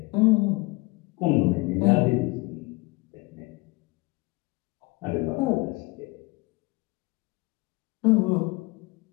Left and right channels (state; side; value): quieter; right; 24.7 dB